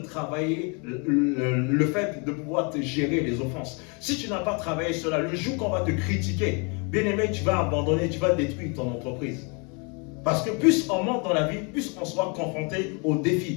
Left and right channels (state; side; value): quieter; right; 33.8 dB